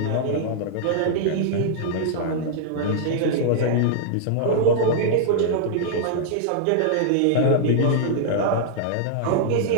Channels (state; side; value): different; both; correlation -0.01